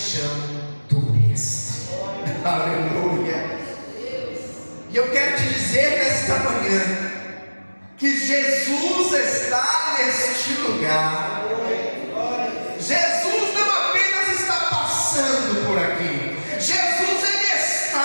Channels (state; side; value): inverted; both; correlation -1.00